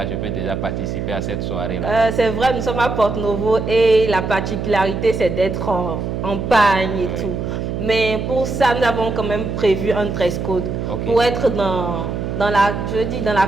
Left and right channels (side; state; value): right; noise; hum, 3 dB below the sound